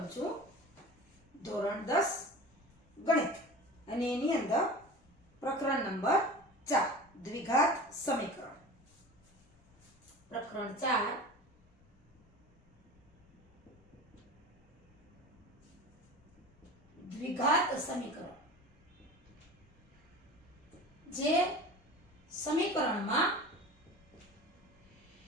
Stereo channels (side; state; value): both; normal; correlation 0.36